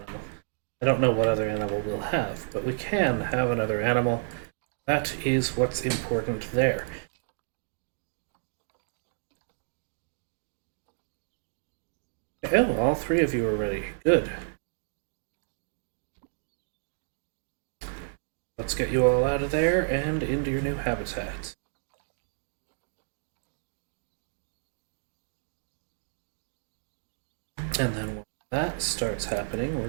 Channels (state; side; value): silent; left; digital silence